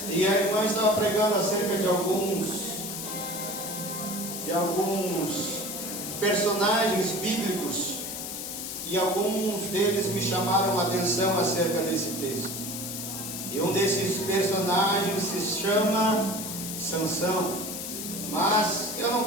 e a irmã estava pregando acerca de alguns personagens bíblicos, e alguns deles me chamaram a atenção acerca desse texto. E um desses personagens se chama Sansão. Mas eu não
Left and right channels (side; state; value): left; noise; hiss, 6 dB below the sound